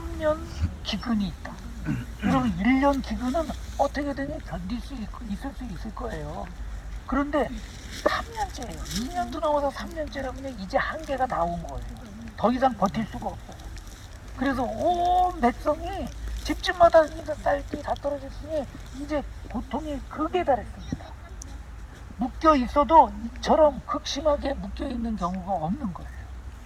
기근이 있다. 여러분 1년 기근은 어떻게든 견딜 수 있을 수 있을 거예요. 그런데 3년째예요. 2년도 넘어서 3년째라면 이제 한계가 다 온 거예요. 더 이상 버틸 수가 없어요. 그래서 온 백성이 집집마다 딸기 다 떨어졌으니 이제 고통이 극에 달했습니다. 묶여 있어도 이처럼 극심하게 묶여 있는 경우가 없는 거예요.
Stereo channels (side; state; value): both; identical; correlation 1.00